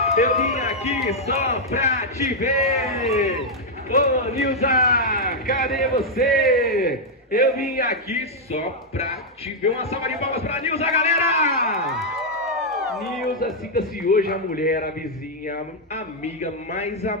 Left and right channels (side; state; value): both; normal; correlation -0.03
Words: Eu vim aqui só pra te ver! Ô, Nilza, cadê você? Eu vim aqui só pra te ver. Uma salva de palmas pra Nilza, galera! Nilza, sinta-se hoje a mulher, a vizinha, a amiga mais